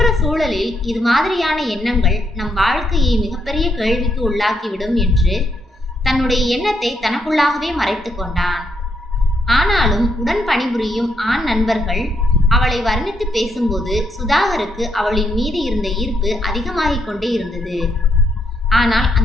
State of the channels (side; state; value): both; normal; correlation 0.77